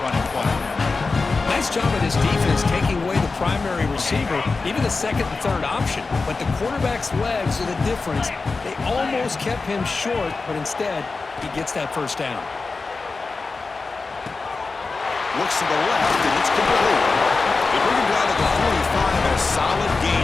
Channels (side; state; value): right; quieter; 4.0 dB